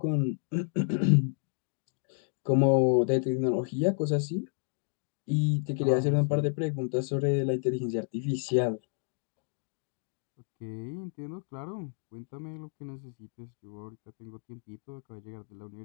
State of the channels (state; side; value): silent; right; 55 dB below the other